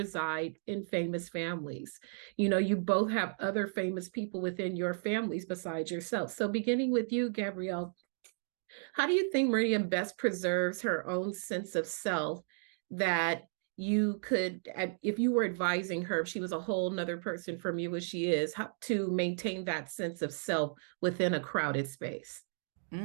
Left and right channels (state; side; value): silent; left; digital silence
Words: in famous families. You both have other famous people within your families besides yourself. So beginning with you, Gabrielle, how do you think Meridian best preserves her own sense of self that you could, if you were advising her, if she was a whole nother person from you as she is, how to maintain that sense of self within a crowded space?